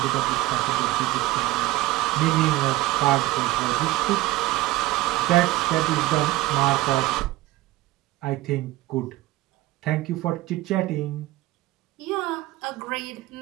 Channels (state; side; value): quieter; left; 17.4 dB